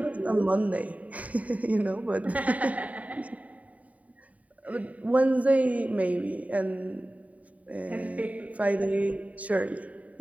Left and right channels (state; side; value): late; left; 0.069 ms